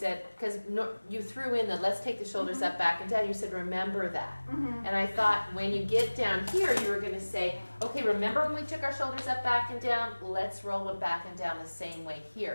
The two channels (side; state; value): both; inverted; correlation -1.00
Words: because you threw in the let's take the shoulders up, back, and down. You said, remember that. And I thought when you get down here, you were going to say, okay, remember when we took our shoulders up, back, and down? Let's roll them back and down the same way